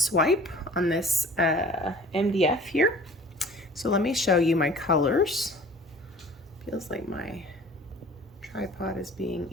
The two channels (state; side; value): normal; both; correlation 0.47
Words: on this MDF here. So let me show you my colors. Feels like my tripod is being